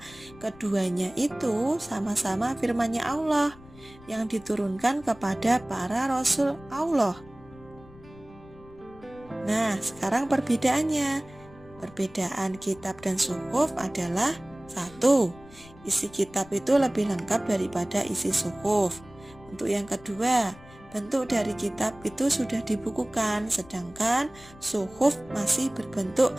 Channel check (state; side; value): noise; left; rumble, 22 dB below the sound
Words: keduanya itu sama-sama firman-Nya Allah yang diturunkan kepada para rasul Allah. Nah, sekarang perbedaannya. Perbedaan kitab dan suhuf adalah 1. Isi kitab itu lebih lengkap daripada isi suhuf. Untuk yang kedua, bentuk dari kitab itu sudah dibukukan, sedangkan suhuf masih berbentuk